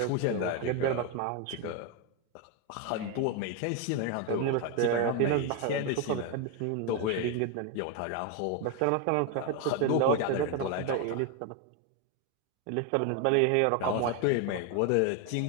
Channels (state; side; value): different; both; correlation 0.01